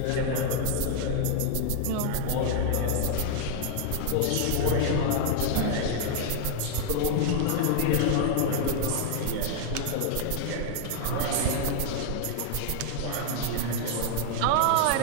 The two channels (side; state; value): both; different; correlation 0.00